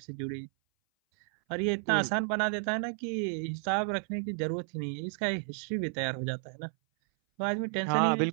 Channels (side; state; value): left; silent; 57 dB below the other